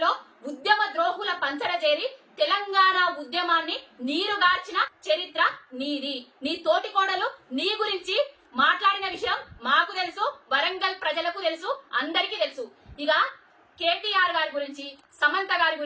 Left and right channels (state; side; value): identical; both; correlation 1.00